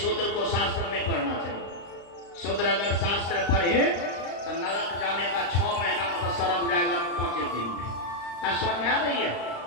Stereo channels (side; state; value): right; late; 35 ms